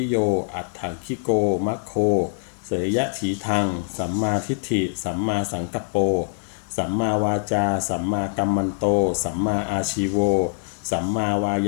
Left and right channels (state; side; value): silent; right; 63 dB below the other